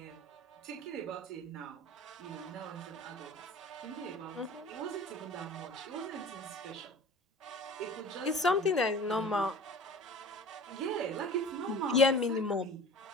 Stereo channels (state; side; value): normal; both; correlation 0.40